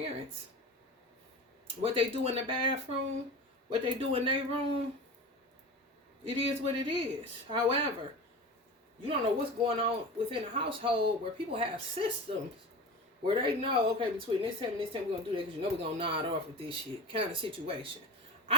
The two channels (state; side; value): normal; both; correlation 0.31